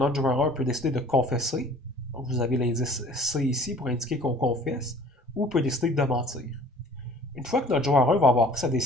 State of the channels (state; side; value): normal; both; correlation 0.50